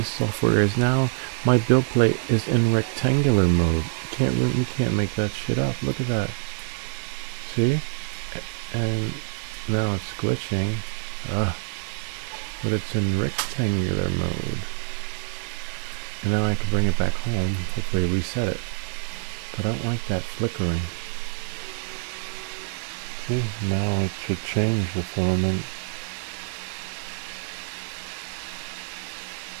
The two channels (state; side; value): silent; left; 61 dB below the other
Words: software is now, my build plate is in rectangular mode. You can't make that shit up. Look at that. See, and now it's glitching. But it's in rectangular mode. And now I can bring it back home. Hopefully reset it. But I don't like that flickering. See, now it should change the filament.